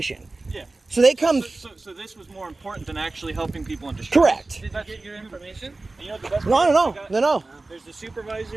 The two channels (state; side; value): quieter; left; 3.3 dB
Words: Yeah. So they come... So this was more important than actually helping people in distress. Correct. Did you get your information? And you know the best No, part? no. There's the